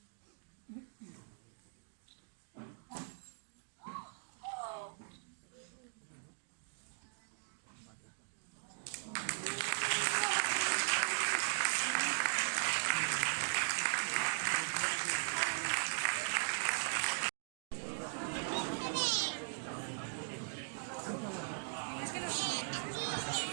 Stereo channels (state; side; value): silent; left; digital silence